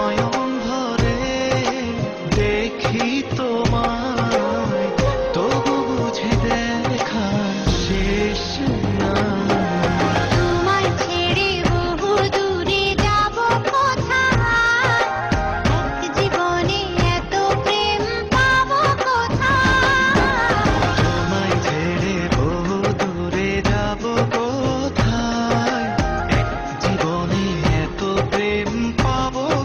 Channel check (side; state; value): both; identical; correlation 1.00